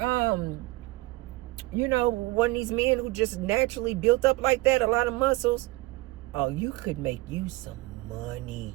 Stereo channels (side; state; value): left; quieter; 20.4 dB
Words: you know, one of these men who just naturally built up like that, a lot of muscles, oh, you could make you some